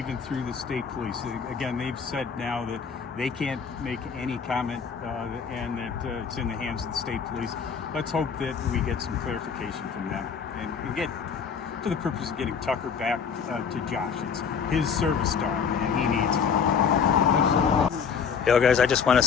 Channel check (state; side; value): quieter; right; 6.4 dB